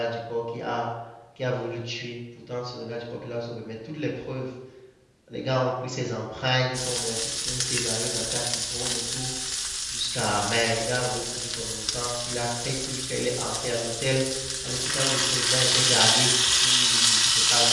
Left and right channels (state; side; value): identical; both; correlation 1.00